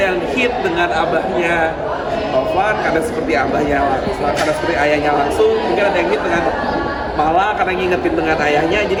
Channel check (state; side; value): identical; both; correlation 1.00